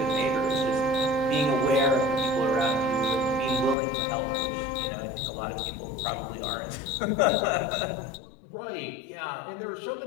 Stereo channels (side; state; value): right; drops out; at 3.8 s